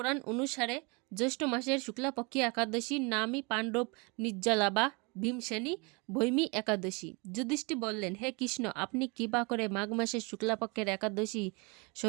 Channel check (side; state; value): left; quieter; 29.8 dB